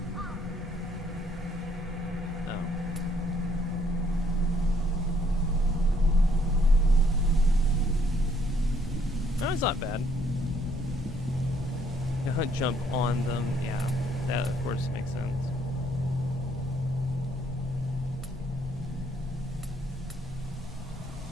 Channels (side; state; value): both; normal; correlation 0.67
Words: no. No, it's not bad. Jump on them, yeah, that of course makes sense.